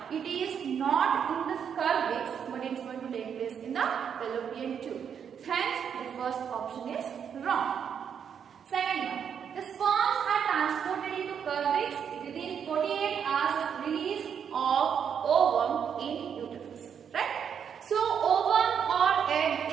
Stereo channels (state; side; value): quieter; left; 7.7 dB